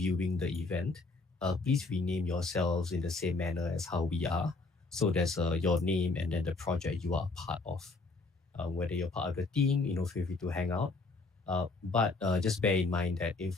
the event, please rename yourselves in the same manner as how we are. So there's your name and then the project you are a part of. Whether you're part of the team, feel free to hang out. But just bear in mind that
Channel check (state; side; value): quieter; right; 3.5 dB